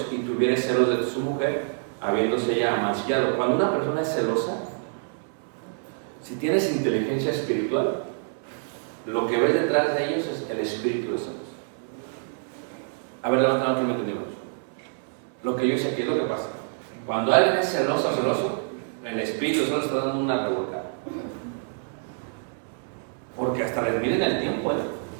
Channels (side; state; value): left; silent; 61 dB below the other